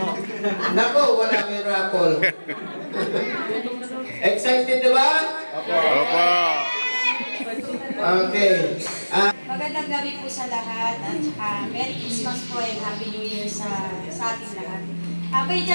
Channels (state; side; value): inverted; both; correlation -1.00